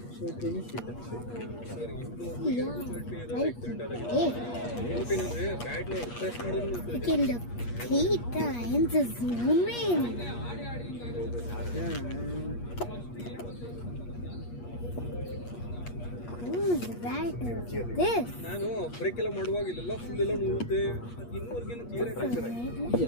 Three times zoom in. Who's that? This. ನಾನು ಬ್ರೇಕ್ ಎಲ್ಲ ಮಾಡುವಾಗ ಇಲ್ಲೆಲ್ಲ ಫುಲ್ ಎಲ್ಲ ನೋಡುತ್ತೆ ಇನ್ನೂವರೆಗೇನು ಕ್ಲಿಯರ್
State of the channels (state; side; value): late; right; 8.4 ms